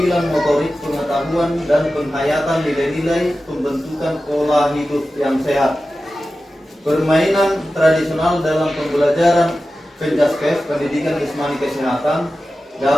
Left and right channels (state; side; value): normal; both; correlation 0.94